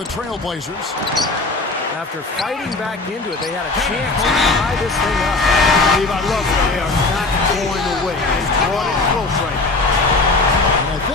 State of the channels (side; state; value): right; quieter; 3.4 dB